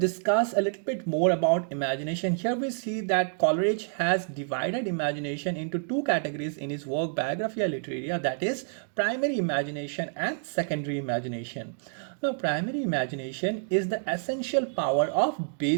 a little bit more about imagination. Here we see that Coleridge has divided imagination into two categories in his work Biographia Literaria, that is primary imagination and secondary imagination. Now primary imagination is the essential power of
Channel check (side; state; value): left; silent; digital silence